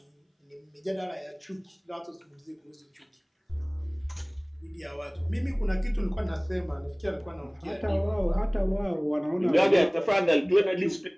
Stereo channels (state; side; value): identical; both; correlation 1.00